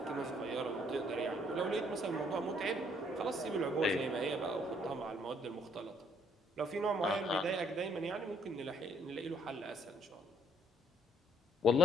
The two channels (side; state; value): both; normal; correlation 0.66